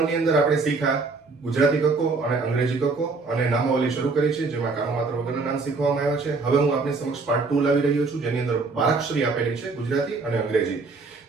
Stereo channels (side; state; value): left; quieter; 4.0 dB